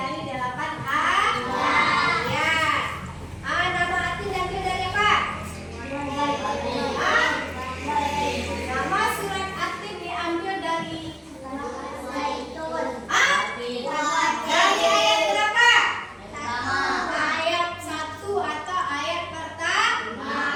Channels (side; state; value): both; identical; correlation 1.00